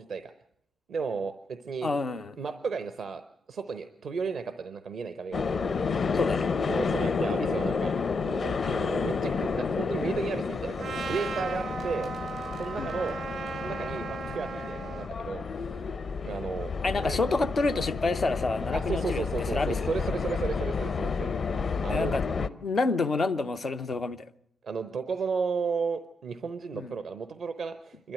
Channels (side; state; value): both; normal; correlation 0.81